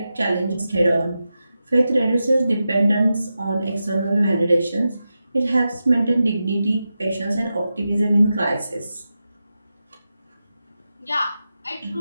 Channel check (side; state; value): both; inverted; correlation -0.91